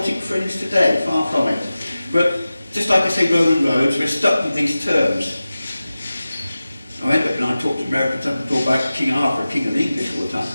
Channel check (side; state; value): both; inverted; correlation -0.96